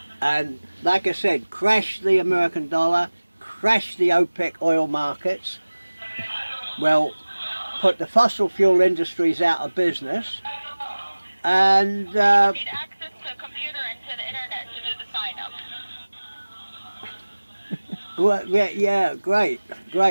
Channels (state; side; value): inverted; both; correlation -1.00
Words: And like I said, crash the American dollar, crash the OPEC oil markets. Well, put the fossil fuel industries out of business. And You need access to a computer and to the internet to do the sign up. well, yeah, great,